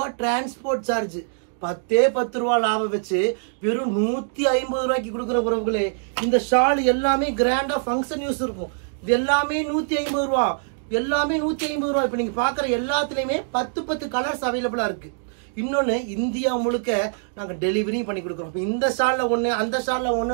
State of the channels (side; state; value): left; silent; digital silence